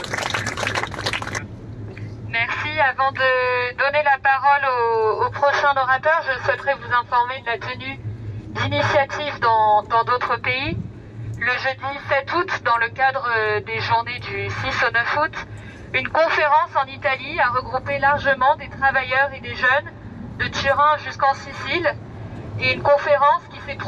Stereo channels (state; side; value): identical; both; correlation 1.00